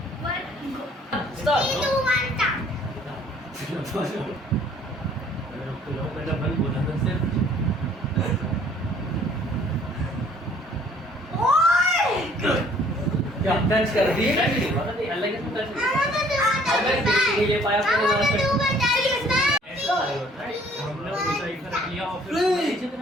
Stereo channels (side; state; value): both; normal; correlation 0.58